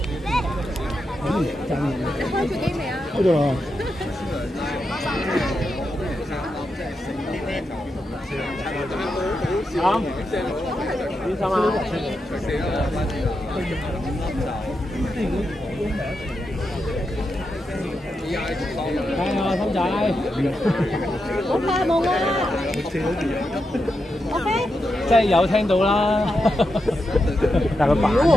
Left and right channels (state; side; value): normal; both; correlation 0.86